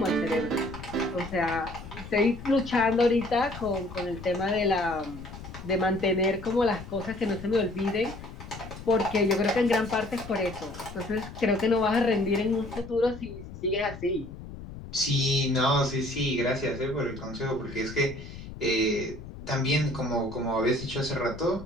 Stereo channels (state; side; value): noise; left; rumble, 13 dB below the sound